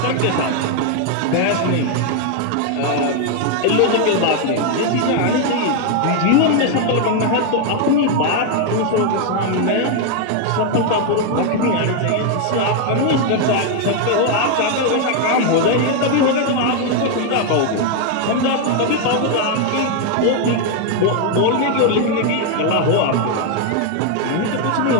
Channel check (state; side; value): different; both; correlation 0.01